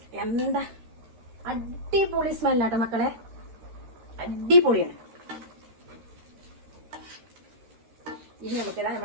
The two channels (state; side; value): late; left; 13 ms